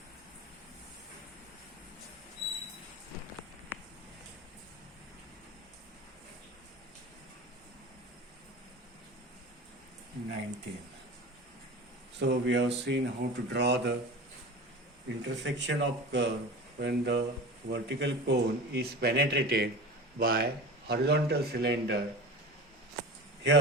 So we have seen how to draw the intersection of curve when the vertical cone is penetrated by horizontal cylinder.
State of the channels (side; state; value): both; normal; correlation 0.32